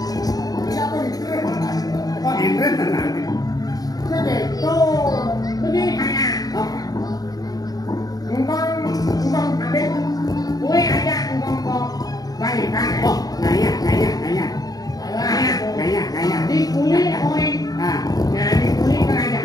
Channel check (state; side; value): late; right; 0.18 ms